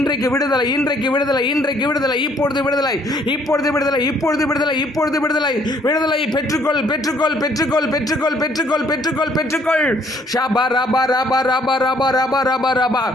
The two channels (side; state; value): both; normal; correlation 0.64